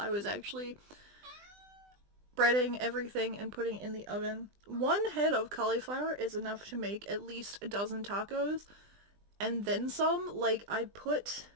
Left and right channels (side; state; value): left; late; 20 ms